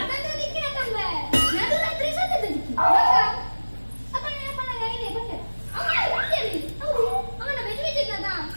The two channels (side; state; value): both; inverted; correlation -1.00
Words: ದಿಕ್ಕಿನ ತಂಬೆ ನದೂರಾತ್ರಿ ಸತ್ತದ ದಿಕ್ಕಿ ಅಪ್ಪ ನೆನಪಲ್ಲ ಗೈನೆ ಬಂದೆ ಅವನ ಬೆಜ್ಜಿದ್ದದ